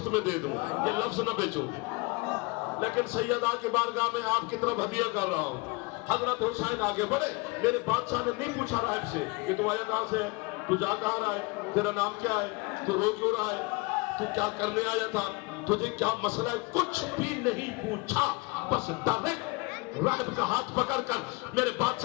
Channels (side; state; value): right; quieter; 26.8 dB